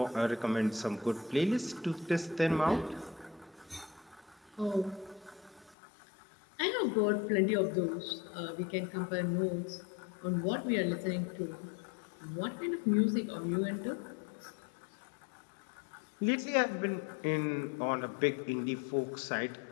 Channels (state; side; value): drops out; right; at 5.8 s